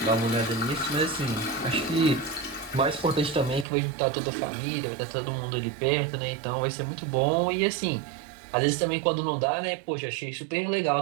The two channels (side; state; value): left; drops out; at 3.7 s